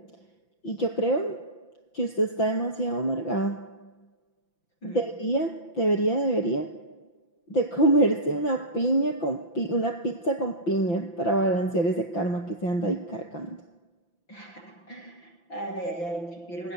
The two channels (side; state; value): right; late; 5.9 ms